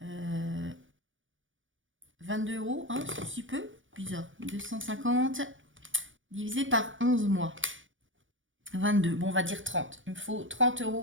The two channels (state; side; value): late; left; 0.57 ms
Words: 22 €, hein, c'est si peu, bizarre. 250 divisé par 11 mois. 22, bon on va dire 30. Il me faut 30